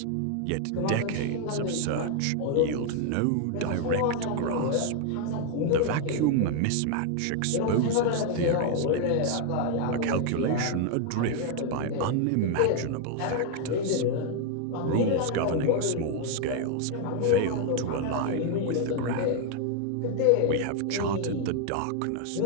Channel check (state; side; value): different; both; correlation 0.00